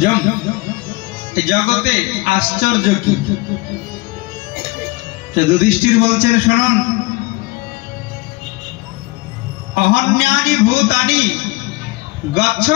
জগতে আশ্চর্য কি? যুধিষ্ঠির বলছেন, শুনুন, অহন্যানি ভূতানি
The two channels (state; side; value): quieter; right; 22.0 dB